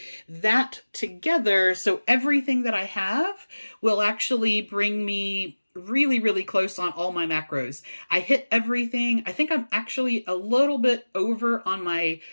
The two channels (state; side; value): inverted; both; correlation -1.00